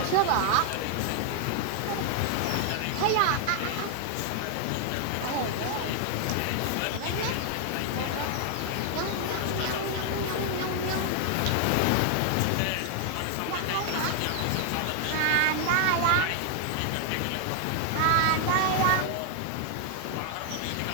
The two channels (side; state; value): both; different; correlation 0.00